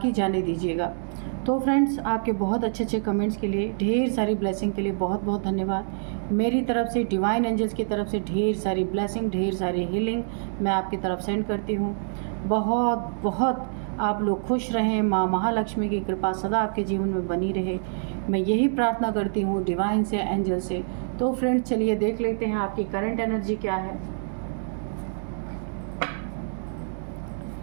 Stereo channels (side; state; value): left; silent; digital silence